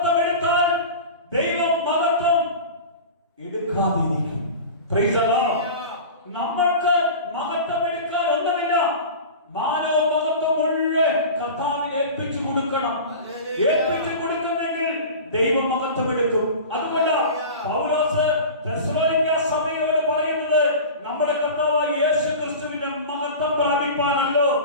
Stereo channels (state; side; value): inverted; both; correlation -0.33